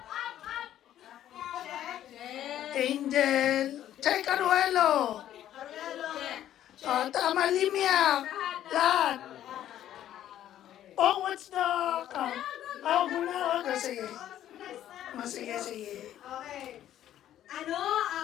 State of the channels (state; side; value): quieter; right; 11.8 dB